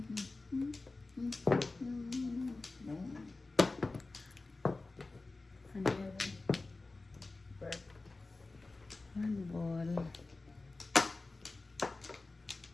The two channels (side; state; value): right; quieter; 3.4 dB